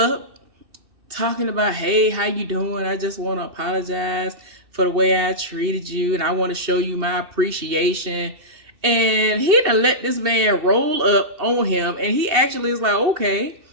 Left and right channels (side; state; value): left; late; 2.8 ms